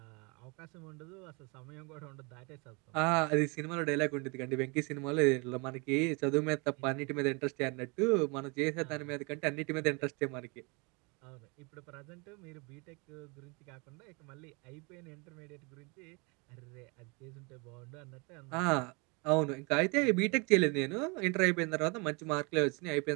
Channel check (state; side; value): quieter; left; 30.1 dB